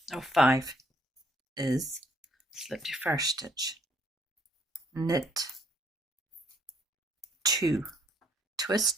row 5 is slip your first stitch, knit 2,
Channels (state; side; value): normal; both; correlation 0.68